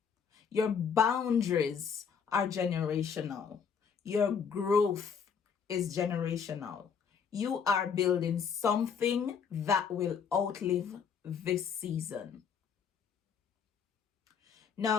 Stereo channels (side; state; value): right; quieter; 6.7 dB